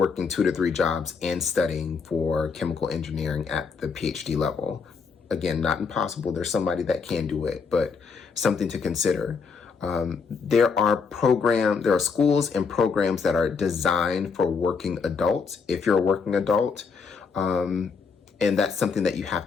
2 to 3 jobs and studying for chemical engineering at the PhD level. Again, not impossible. There's somebody that can do it, but something to consider. There are schools and programs that are designed for working adults, if you're a working adult, and that's something that you have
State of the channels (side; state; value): right; quieter; 5.3 dB